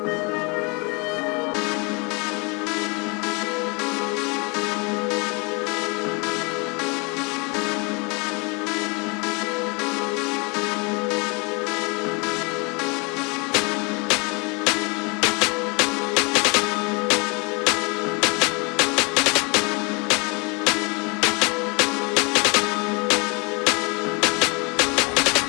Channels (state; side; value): quieter; right; 30.8 dB